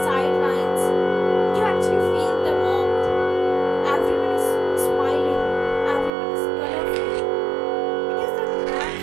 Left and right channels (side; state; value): left; drops out; at 6.1 s